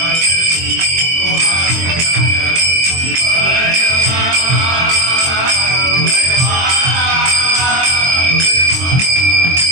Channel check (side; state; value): left; late; 23 ms